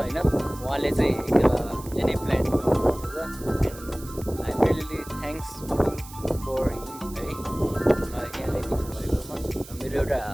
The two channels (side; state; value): right; noise; hiss, 17 dB below the sound